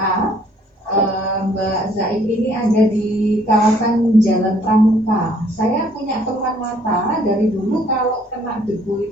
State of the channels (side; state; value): both; normal; correlation 0.62